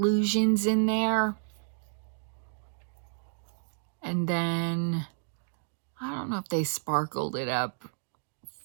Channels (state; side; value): silent; left; digital silence